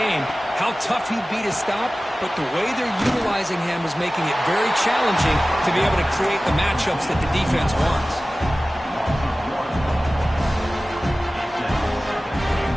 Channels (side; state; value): both; normal; correlation 0.97